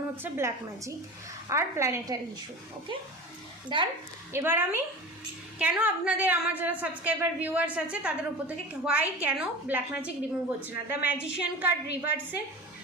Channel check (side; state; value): both; normal; correlation 0.33